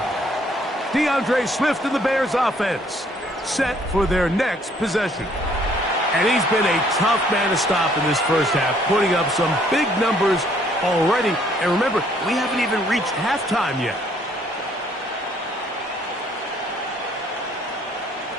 DeAndre Swift and the Bears offense set for their next possession. And he's been a tough man to stop in this first half, putting up some big numbers already. And remember, we haven't even reached halftime yet.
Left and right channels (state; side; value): normal; both; correlation 0.64